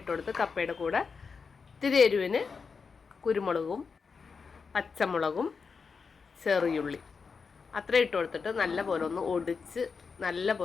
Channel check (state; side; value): quieter; right; 5.3 dB